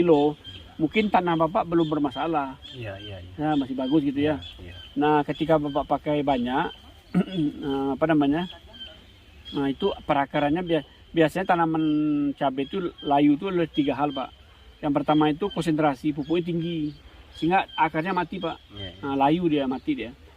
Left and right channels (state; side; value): identical; both; correlation 1.00